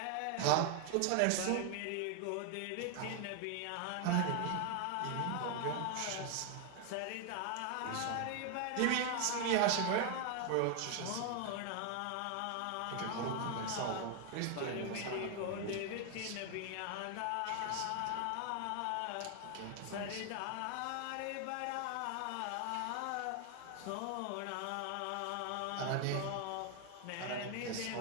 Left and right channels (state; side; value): different; both; correlation 0.00